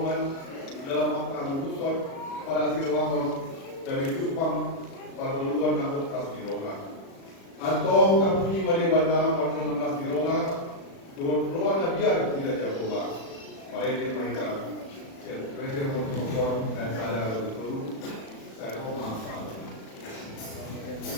dalam makna lutusan pada sirwangon dan itupang pada luar nakut pas diroga atau kapunyi Madewata pada pas diroga Tuhan ruang biar tidak jagolah. Mari kita presiden untuk dan sadar betul. Saya mau maaf.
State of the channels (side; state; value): right; late; 36 ms